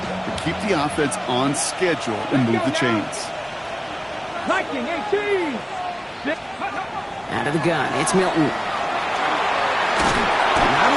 that keep the offense on schedule and move the chains. Out of the gun, it's Milton. Not a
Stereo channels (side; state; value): both; identical; correlation 1.00